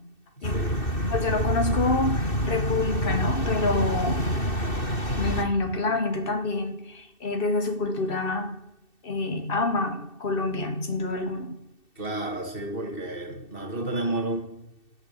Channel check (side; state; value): right; late; 2.6 ms